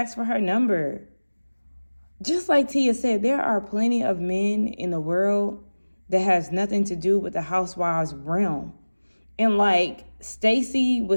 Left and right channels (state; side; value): inverted; both; correlation -1.00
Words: for her number. Just like Tia said, there are plenty of men in the world that has nothing to do with the Housewives realm. And like Stacey